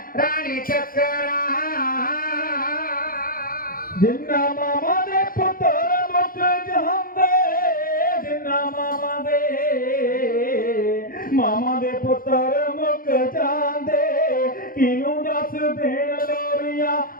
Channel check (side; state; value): right; late; 0.42 ms